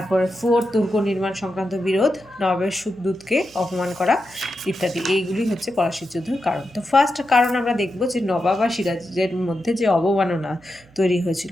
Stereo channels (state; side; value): noise; right; hum, 27 dB below the sound